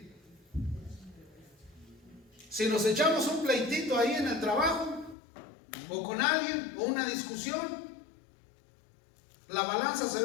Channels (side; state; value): right; drops out; at 5.2 s